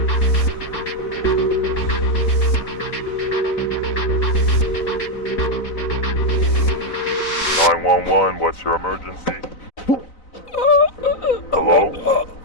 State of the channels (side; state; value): right; late; 3.9 ms